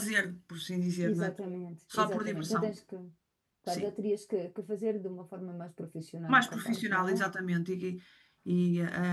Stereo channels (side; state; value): both; identical; correlation 1.00